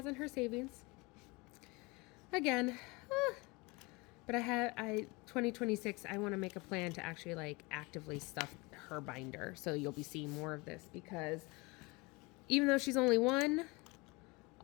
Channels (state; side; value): quieter; right; 26.0 dB